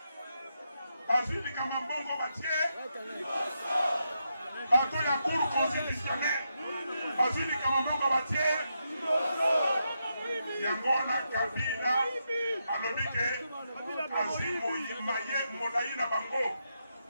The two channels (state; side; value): inverted; both; correlation -0.84